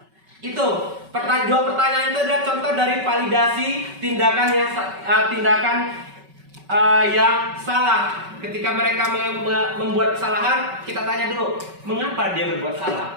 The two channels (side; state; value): left; late; 5.3 ms